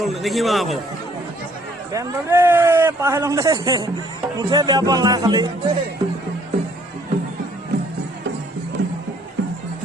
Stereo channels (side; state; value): both; normal; correlation 0.62